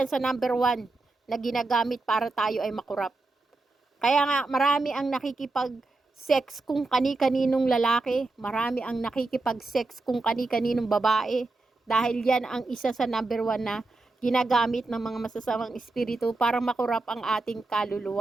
sa number 1 na ginagamit para tayo ay makurap. Kaya nga, marami ang nakikipag-sex kung kani-kaninong lalaki. Marami ang nakikipag-sex kung kani-kaninong babae. Dahil yan ang isa sa number 1 na ginagamit ng mga masasamang espiritu para makurap ang ating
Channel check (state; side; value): quieter; left; 3.3 dB